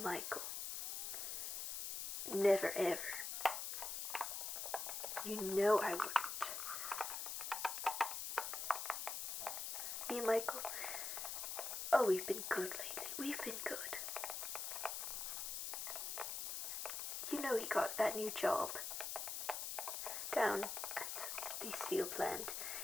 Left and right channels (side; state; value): left; noise; hiss, 3 dB below the sound